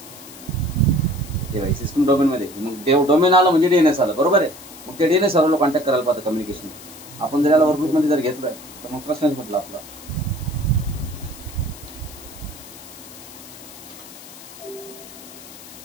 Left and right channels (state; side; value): noise; left; hiss, 17 dB below the sound